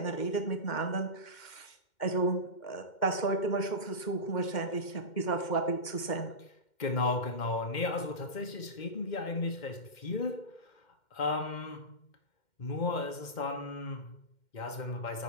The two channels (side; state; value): right; late; 2.1 ms